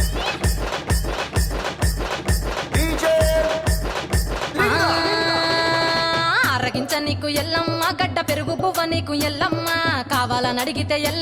ఆరగించ నీకు ఎల్లమ్మ గడ్డ పెరుగు పువ్వ నీకు ఎల్లమ్మ కావాలని అడిగితే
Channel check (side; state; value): both; identical; correlation 1.00